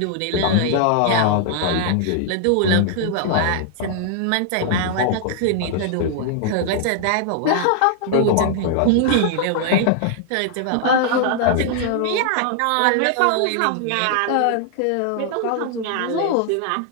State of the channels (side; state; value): both; different; correlation 0.00